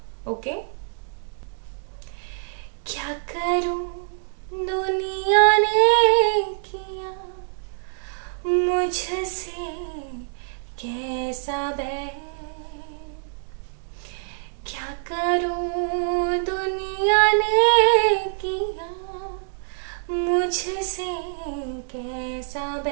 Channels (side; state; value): left; silent; digital silence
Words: ओके। क्या करूं दुनिया ने किया मुझसे कैसा बैर, क्या करूं दुनिया ने किया मुझसे कैसा